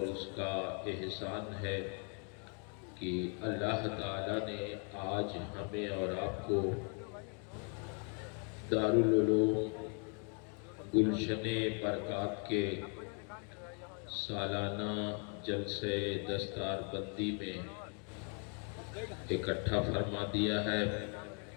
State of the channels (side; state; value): right; quieter; 39.6 dB